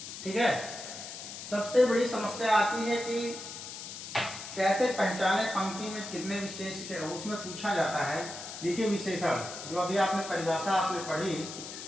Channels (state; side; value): noise; left; hiss, 10 dB below the sound